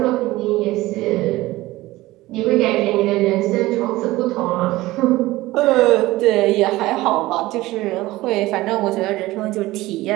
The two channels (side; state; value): left; quieter; 18.3 dB